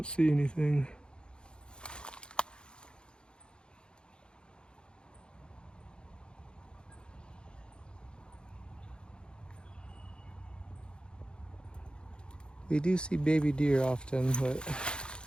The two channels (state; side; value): late; right; 0.051 ms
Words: see anything. We do see baby deer often, but